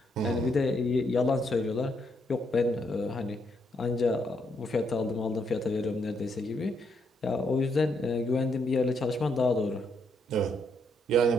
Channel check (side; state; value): both; normal; correlation 0.75